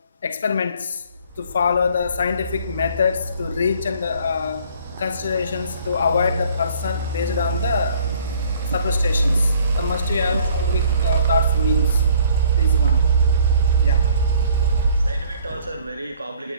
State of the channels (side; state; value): both; inverted; correlation -0.57